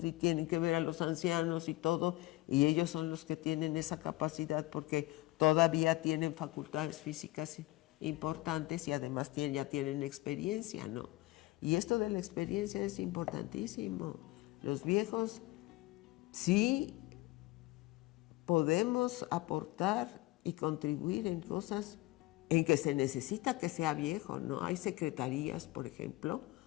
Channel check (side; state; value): right; quieter; 19.6 dB